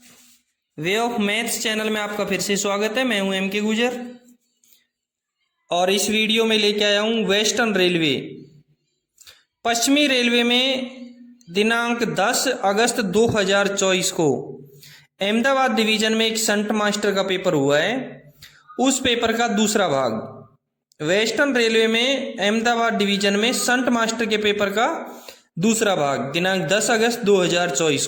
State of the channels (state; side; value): identical; both; correlation 1.00